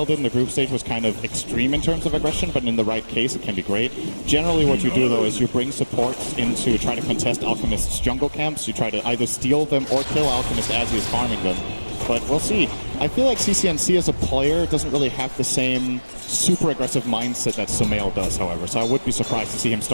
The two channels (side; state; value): both; inverted; correlation -1.00